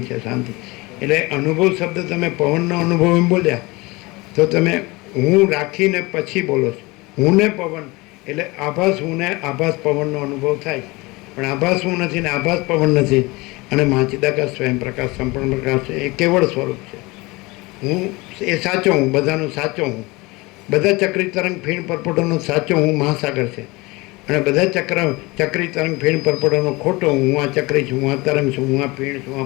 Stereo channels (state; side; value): quieter; right; 23.5 dB